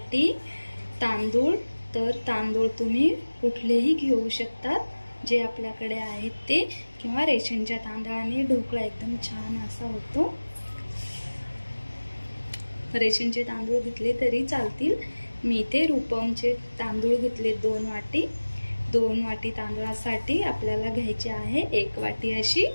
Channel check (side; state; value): both; inverted; correlation -1.00